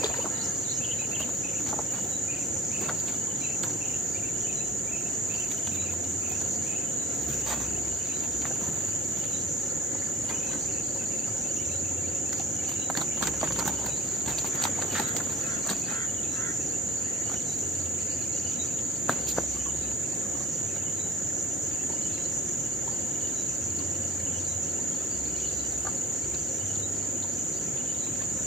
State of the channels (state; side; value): normal; both; correlation 0.46